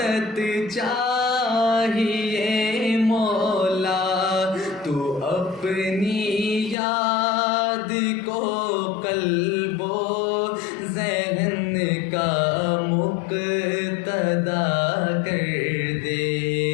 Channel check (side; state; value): right; drops out; at 6.8 s